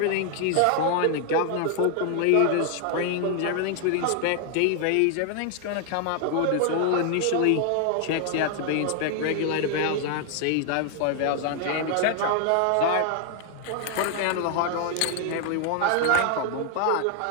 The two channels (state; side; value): different; both; correlation 0.00